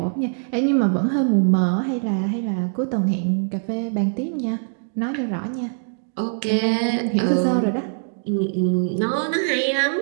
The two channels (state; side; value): silent; left; 61 dB below the other